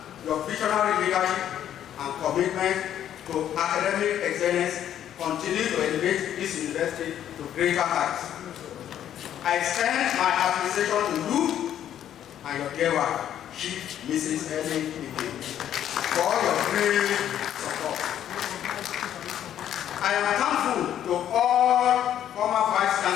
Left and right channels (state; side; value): quieter; right; 10.6 dB